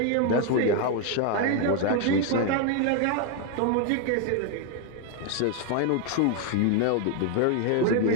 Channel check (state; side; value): different; both; correlation 0.01